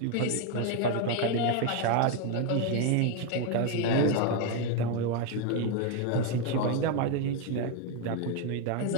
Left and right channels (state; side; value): different; both; correlation 0.01